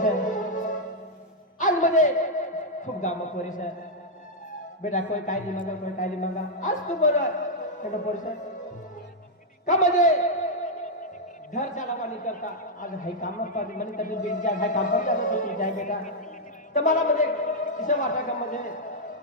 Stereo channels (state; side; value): normal; both; correlation -0.03